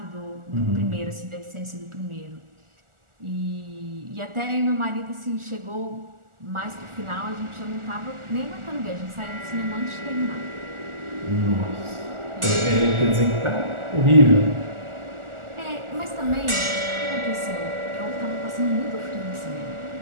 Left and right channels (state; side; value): late; left; 1.4 ms